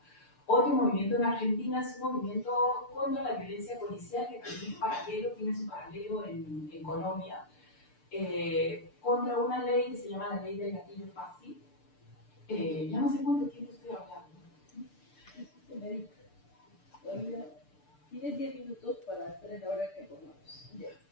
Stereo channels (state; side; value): late; right; 6.7 ms